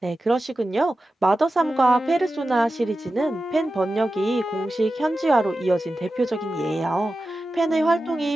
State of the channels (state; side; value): normal; both; correlation 0.93